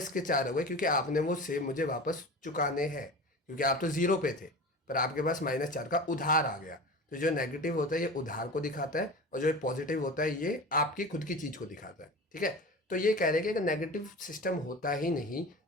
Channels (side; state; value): both; normal; correlation 0.33